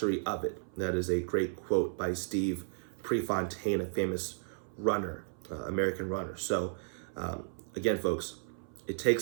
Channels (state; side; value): silent; left; 55 dB below the other